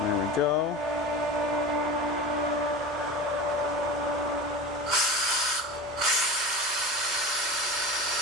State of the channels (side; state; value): both; normal; correlation 0.31